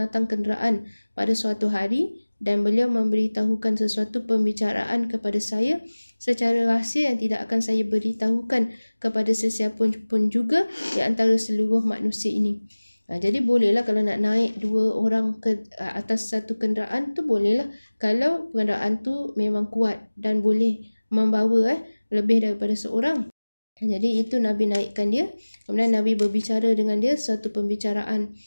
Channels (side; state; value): both; inverted; correlation -1.00